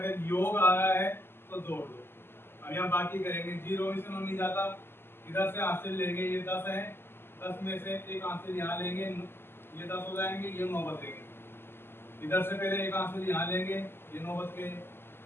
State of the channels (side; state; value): right; late; 0.11 ms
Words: योग आ रहा है तो जोड़ दो। अब यहाँ बाकी करेंगे, 0 में से 9 नहीं जाता, इधर से हासिल लेंगे, ये 10 है, 10 में से एक हासिल यहाँ लेंगे, ये 10 हो जाएंगे, ये 9 बचेंगे। इधर से पहले एक हासिल यहाँ लेंगे, ये 9 बच गए,